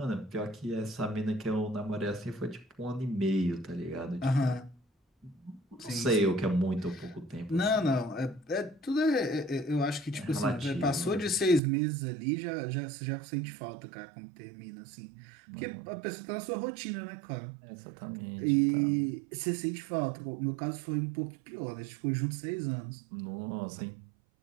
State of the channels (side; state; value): left; drops out; at 11.6 s